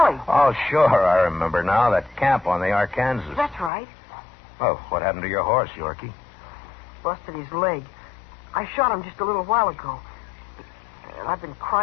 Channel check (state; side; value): drops out; right; at 3.7 s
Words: Oh, sure, I remember now. That camp on the Arkansas. That's right. Oh, what happened to your horse, Yorkie? Busted his leg. I shot him just a little while ago. And I've been